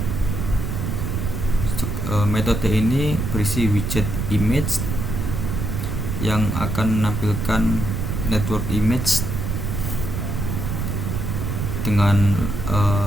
Metode ini berisi widget image yang akan menampilkan network image dengan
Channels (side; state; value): right; noise; rumble, 2 dB below the sound